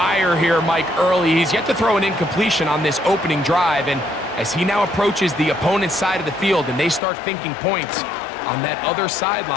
here, Mike, early. He's yet to throw an incompletion on this opening drive. And as he now approaches the opponent's side of the field and they start thinking points on that other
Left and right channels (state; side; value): drops out; right; at 7.0 s